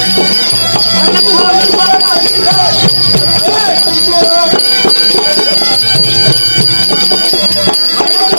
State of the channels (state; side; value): inverted; both; correlation -1.00